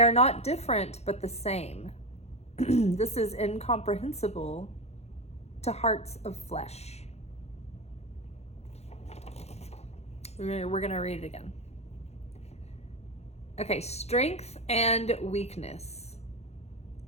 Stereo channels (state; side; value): late; right; 0.31 ms